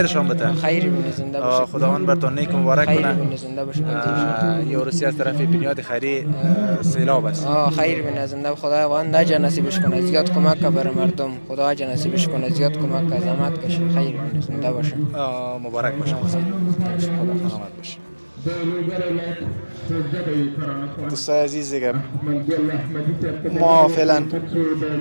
بده. خیر بینه زنده باشه. خداوند براتون نیک مبارک کنه. خیر بینه زنده باشه. یه روسی از طرف بنیاد خیری سیلاب است. خیر بینه زنده خداوند نجا نصیبش کنه. زیاد کمک بر مردم. خدا نجا نصیبش کنه. زیاد کمک زحمت کشه. خیر بینه زنده باشه. مبارک باشه. خدا سلامت باشه. دوستای عزیز دیگه ما فعلا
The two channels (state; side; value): inverted; both; correlation -1.00